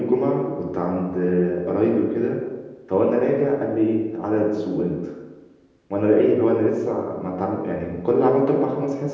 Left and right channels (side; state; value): both; identical; correlation 1.00